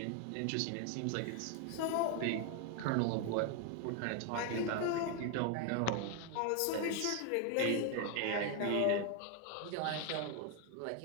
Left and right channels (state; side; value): different; both; correlation 0.01